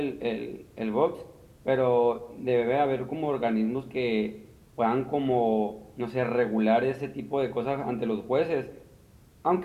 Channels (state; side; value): identical; both; correlation 1.00